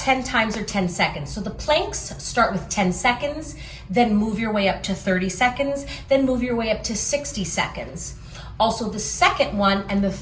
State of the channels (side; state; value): both; identical; correlation 1.00